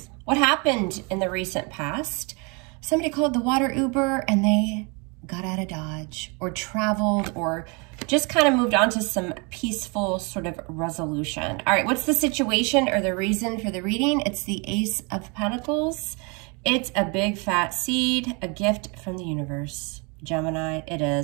What happened in the recent past? Somebody called the water Uber and they got out of Dodge or traveled or just kind of moved on to some peaceful sort of resolution. All right, what's the situation or the reason for the reading? It's the Ace of Pentacles. It's a big fat seed, a gift from the universe. Gemini, it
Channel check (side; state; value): left; quieter; 31.5 dB